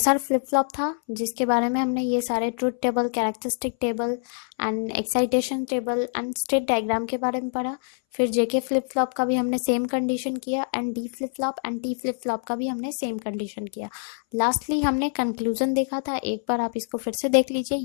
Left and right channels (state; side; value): silent; right; 60 dB below the other